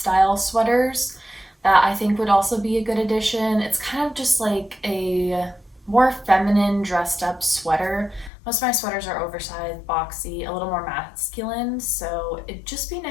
sweaters that I think would also be a good addition. It's kind of just like a more feminine dressed up sweater. Most of my sweaters are oversized, boxy, a little more masculine, so it'd just be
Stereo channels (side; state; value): right; drops out; at 8.3 s